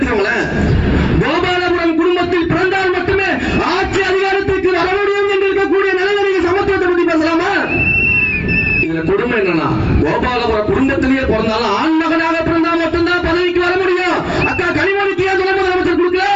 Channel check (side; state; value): both; identical; correlation 1.00